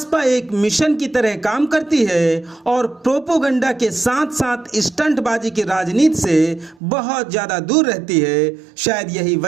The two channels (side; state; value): left; drops out; at 6.8 s